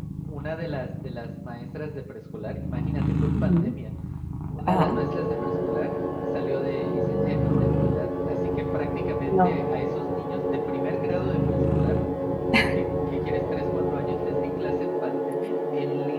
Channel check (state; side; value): identical; both; correlation 1.00